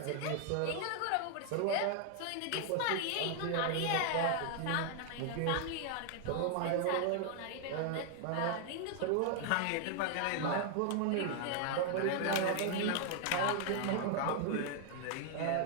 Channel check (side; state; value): both; different; correlation 0.00